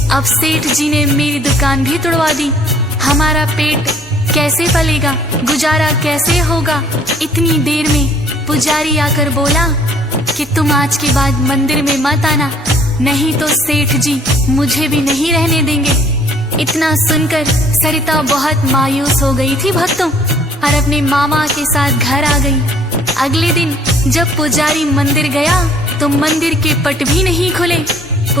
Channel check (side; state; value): both; normal; correlation 0.58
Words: अब सेठ जी ने मेरी दुकान भी तोड़वा दी। हमारा पेट कैसे पलेगा, गुजारा कैसे होगा। इतनी देर में पुजारी आकर बोला कि तुम आज के बाद मंदिर में मत आना, नहीं तो सेठ जी मुझे भी नहीं रहने देंगे। इतना सुनकर सरिता बहुत मायूस हो गई थी भक्तों, और अपने मामा के साथ घर आ गई। अगले दिन जब पुजारी मंदिर गया तो मंदिर के पट भी नहीं खुले।